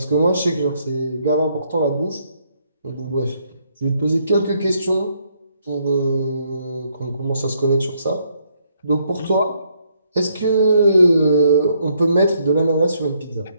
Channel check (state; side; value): inverted; both; correlation -0.72